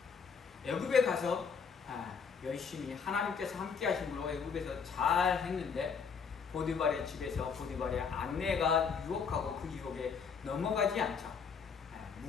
애굽에 가서 열심히 하나님께서 함께 하심으로 애굽에서 잘 했는데 보디발의 집에서 보디발의 아내가 유혹하고 그 유혹에 넘어가지 않자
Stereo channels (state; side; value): quieter; right; 6.0 dB